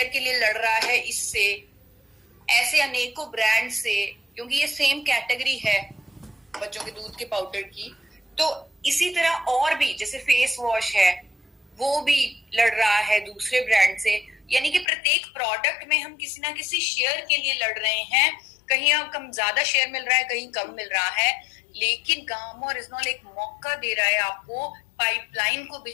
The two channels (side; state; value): right; drops out; at 14.9 s